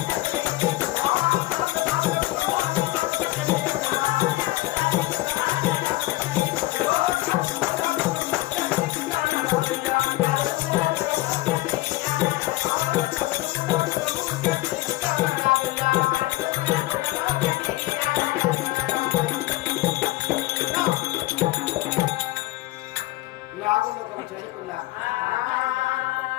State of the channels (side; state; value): right; quieter; 18.9 dB